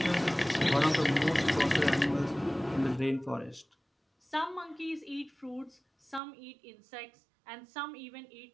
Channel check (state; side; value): drops out; left; at 6.2 s